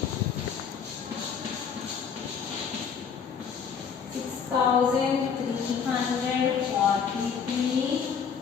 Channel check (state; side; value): quieter; right; 6.8 dB